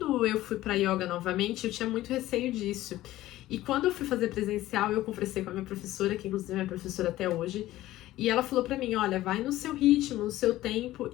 eu fui pra yoga novamente, eu tinha muito receio disso. E quando eu fui fazer presencial, eu conversei com a minha professora, que inclusive é minha professora até hoje, e ela falou pra mim, olha, vai no seu ritmo, no seu tempo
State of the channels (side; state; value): right; quieter; 15.6 dB